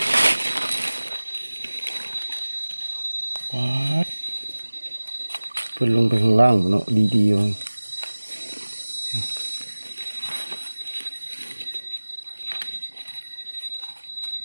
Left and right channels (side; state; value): both; inverted; correlation -1.00